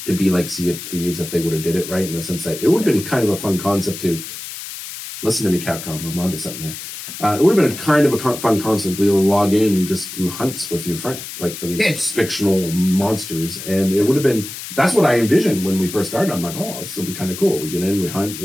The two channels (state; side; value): noise; left; hiss, 10 dB below the sound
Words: to be like Sea of Thieves if they would have did it right in the sense that it would have been kind of a fun concept to listen to me, Capcom. I'm onto something here. It would have been kind of a fun concept. We'll log in and just do hunts with your friend, like for these fictional monsters. And it would have been, that's what I envisioned when we first started. I'm like, oh, this will be kind of cool. We get in, we hunt,